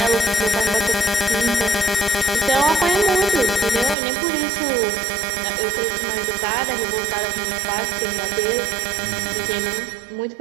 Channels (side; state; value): left; drops out; at 4.0 s